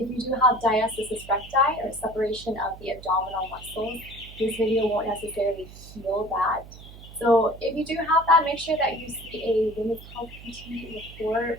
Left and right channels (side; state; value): right; noise; hum, 17 dB below the sound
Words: you do have diastasis recti or separation of the abdominal muscles, this video won't necessarily heal that. So if you do have that, make sure that you see a women's health PT before